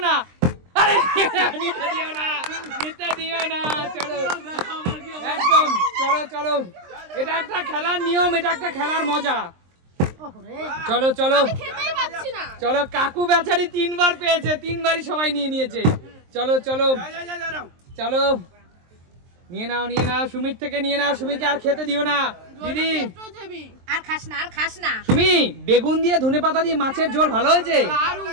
না। আরে নিতে দিও না। চলো একদম, চলো চলো। এটা একটা খেলার নিয়ম, এটা একটা খেলার মজা। চলো চলো চলো, কাকু বেচারি 3 বার পেয়েছে, 3 বারই সবাই নিয়ে নিয়েছে। চলো চলো চলো, নিয়ে নাও সুমির থেকে নিয়ে নাও। সুমিকে আর খেতে দিও না দিদি। আর খাস না। সুমি, বেগুন দিয়ে ধনেপাতা দিয়ে মাছের ঝোল ভালো হয়েছে,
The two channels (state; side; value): late; left; 23 ms